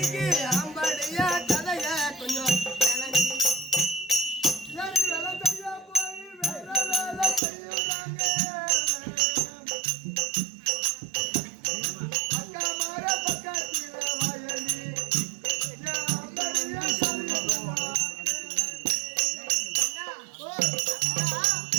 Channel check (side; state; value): left; drops out; at 7.4 s